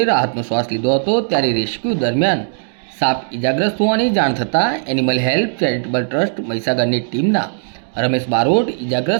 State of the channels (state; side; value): silent; left; digital silence